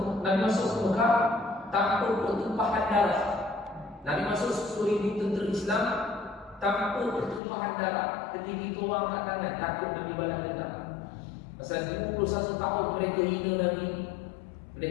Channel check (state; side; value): drops out; right; at 7.4 s